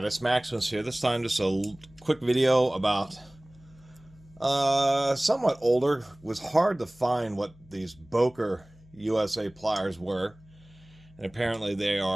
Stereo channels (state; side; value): noise; left; hum, 26 dB below the sound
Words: Maximus here. This time just a quick video about somewhat older. It was hard to find what these Boker USA pliers were, and apparently they